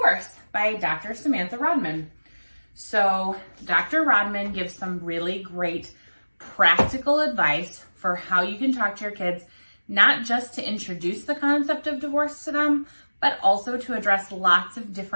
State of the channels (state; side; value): inverted; both; correlation -1.00